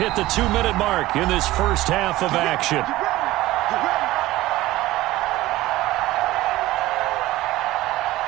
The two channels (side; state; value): left; quieter; 16.8 dB